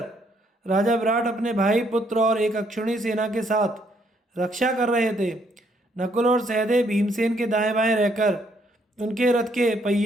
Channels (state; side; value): normal; both; correlation 0.70